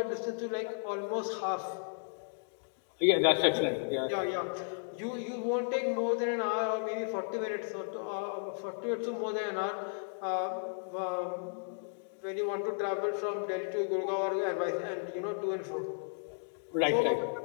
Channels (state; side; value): silent; right; digital silence